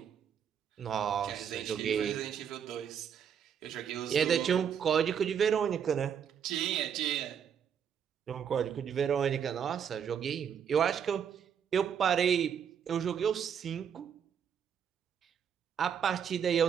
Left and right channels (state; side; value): quieter; left; 8.0 dB